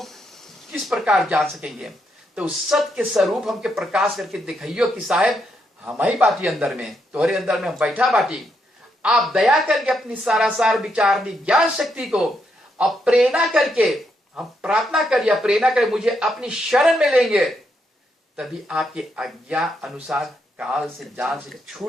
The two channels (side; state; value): both; normal; correlation 0.79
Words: किस प्रकार जान सकेंगे। तो उस सत्य के स्वरूप हमके प्रकाश करके दिखाइयो कि साहेब हम ही बाटी अंदर में, तुम्हारे अंदर में हम बैठा बाटी। आप दया करके अपनी सारासार विचारनी ज्ञान शक्ति को अब प्रेरणा करके हम प्रार्थना करिए, प्रेरणा करें मुझे अपनी शरण में लेंगे, तभी आपके आज्ञा अनुसार काल से जाल से